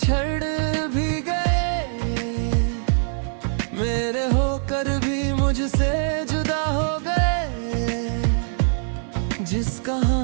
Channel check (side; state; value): left; silent; 63 dB below the other